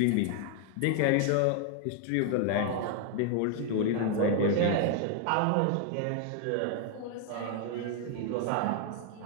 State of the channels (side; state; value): both; different; correlation 0.00